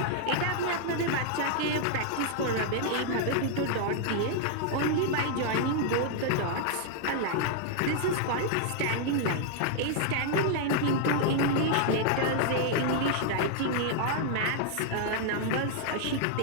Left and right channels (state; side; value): different; both; correlation 0.00